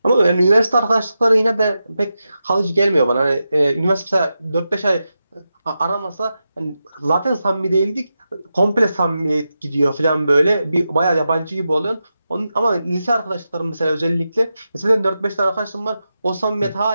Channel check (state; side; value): inverted; both; correlation -0.90